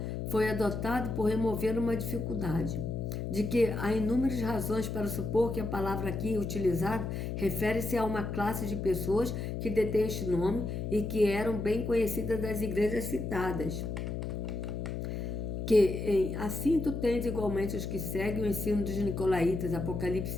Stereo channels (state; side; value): noise; left; hum, 4 dB below the sound